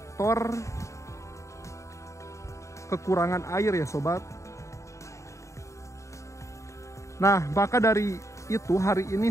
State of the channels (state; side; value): late; right; 0.15 ms